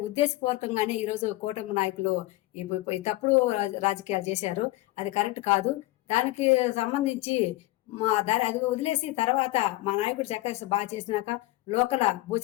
ఉద్దేశపూర్వకంగానే ఈరోజు కూటమి నాయకులు ఈ తప్పుడు రాజకీయాలు చేశారు. అది కరెక్ట్ కాదు. దానికి సంబంధించి అది వదిలేసి తర్వాత మా నాయకుడు చక్కగా బాగా చేసినాక లోకల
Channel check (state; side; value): quieter; right; 18.5 dB